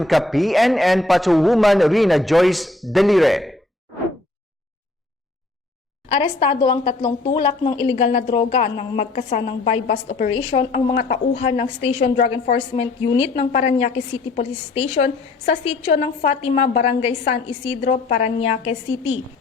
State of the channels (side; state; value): right; quieter; 3.1 dB